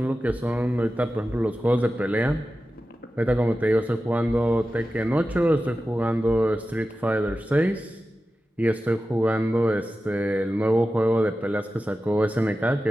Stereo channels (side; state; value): both; normal; correlation 0.93